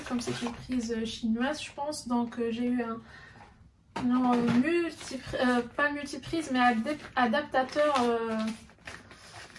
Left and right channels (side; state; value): both; identical; correlation 1.00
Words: comme c'est une prise chinoise je pense, donc j'ai eu pas multiprise mais adaptateur